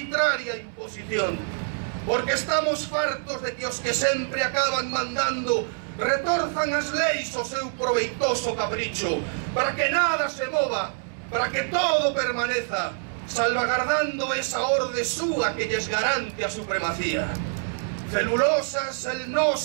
imposición, porque estamos fartos de que os que sempre acaban mandando retorzan as leis o seu proveitoso capricho, para que nada se mova, para que todo permaneza, salvagardando esa orde súa que lles garante a supremacía. Celulosa,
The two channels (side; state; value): left; silent; 61 dB below the other